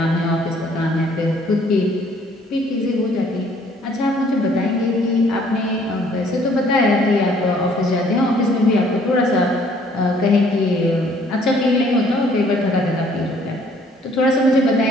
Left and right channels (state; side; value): normal; both; correlation 0.61